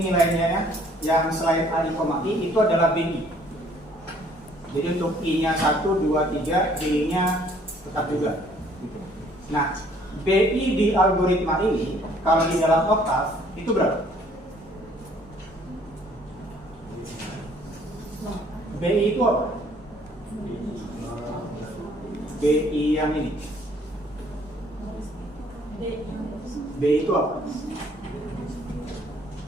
nilainya ya, yang selain AI, I itu adalah BI. Jadi untuk I-nya 1, 2, 3, B-nya tetap juga. Nah, BI di algoritma ini kalau di dalam oktav itu berapa? BI itu apa? BI yang ini. BI itu apa?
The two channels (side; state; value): both; normal; correlation 0.60